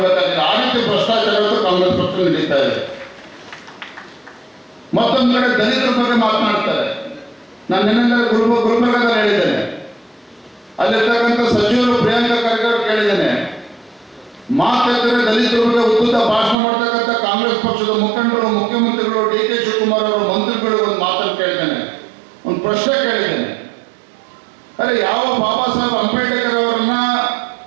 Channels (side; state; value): left; drops out; at 16.6 s